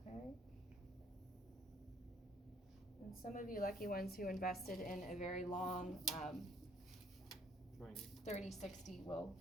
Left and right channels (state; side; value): normal; both; correlation 0.61